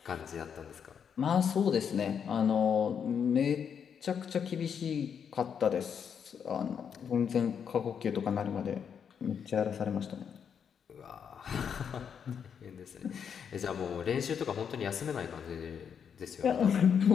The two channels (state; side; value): quieter; right; 7.4 dB